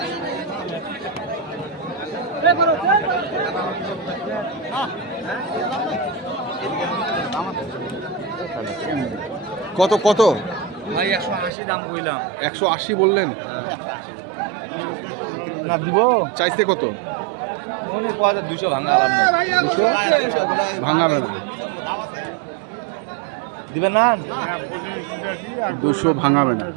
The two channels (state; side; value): drops out; left; at 11.5 s